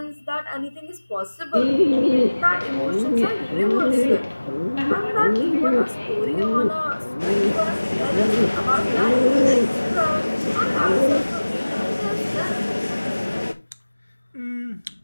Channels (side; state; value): both; inverted; correlation -1.00